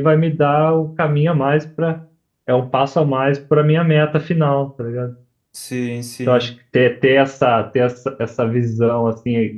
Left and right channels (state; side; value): identical; both; correlation 1.00